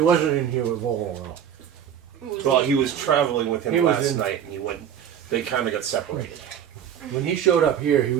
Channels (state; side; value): quieter; left; 9.2 dB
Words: in here with Volo though. Well, he was traveling with him He was last in- night, and he went. They kind of got separated. When he showed up here, he